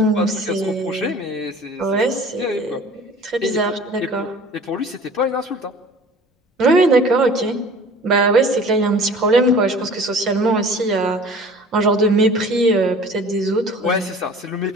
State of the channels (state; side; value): normal; both; correlation 0.45